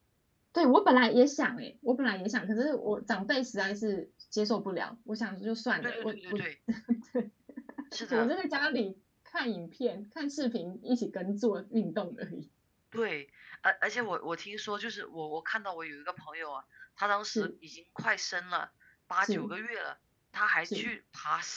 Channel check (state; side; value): identical; both; correlation 1.00